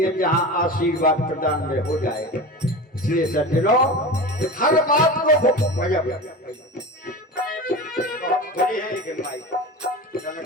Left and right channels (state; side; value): normal; both; correlation 0.29